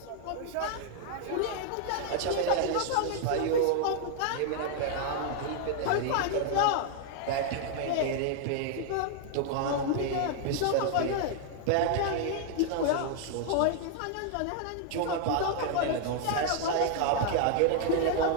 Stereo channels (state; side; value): different; both; correlation 0.00